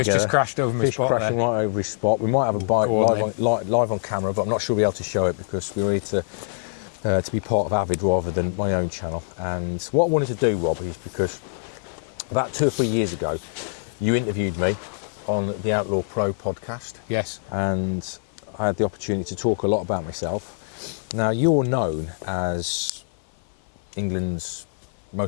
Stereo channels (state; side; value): silent; right; 55 dB below the other